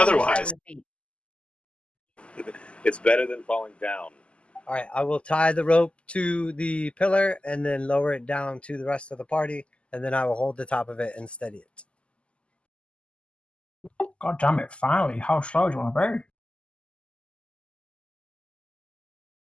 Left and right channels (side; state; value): right; late; 0.054 ms